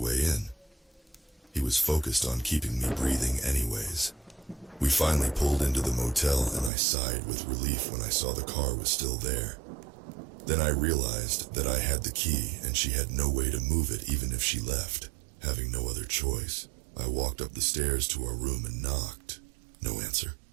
in. He was focused on keeping me breathing anyways. We finally pulled into the motel and I sighed with relief when I saw the car was still there. Then I realized that I had the key and she had no way to move it even if she left. Having no other choice, I walked up the stairs to our room and knocked. No answer.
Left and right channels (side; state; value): left; drops out; at 6.7 s